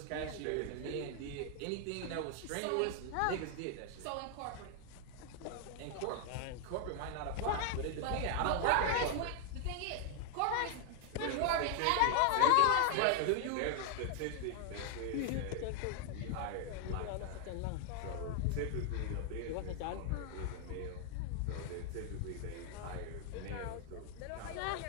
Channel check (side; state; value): both; different; correlation 0.00